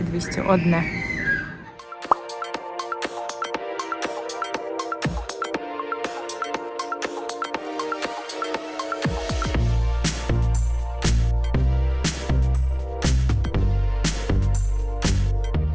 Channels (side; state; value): both; identical; correlation 1.00